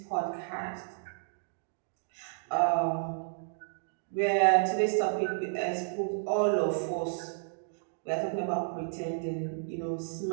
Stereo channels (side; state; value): left; silent; digital silence